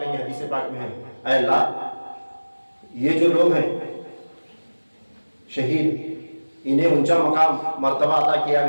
گے. حدیث پاک میں ہے اے اللہ یہ جو لوگ ہیں شہید، انہیں اونچا مقام مرتبہ عطا کیا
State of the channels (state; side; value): inverted; both; correlation -1.00